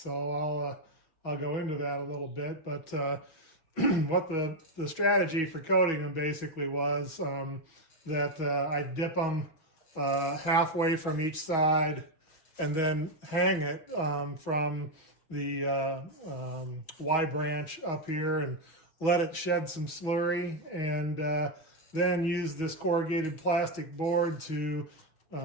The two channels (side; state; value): right; late; 6.2 ms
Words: I'll go into that a little bit. But what the strategy for coating them basically was that I dip them halfway from each side, and then hang it from the Y branch up here and let it shed some slurry, and then use this corrugated plastic board to